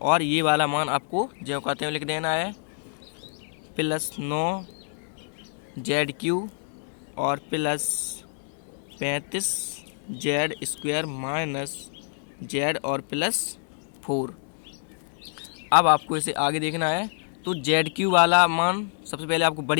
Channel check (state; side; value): silent; right; digital silence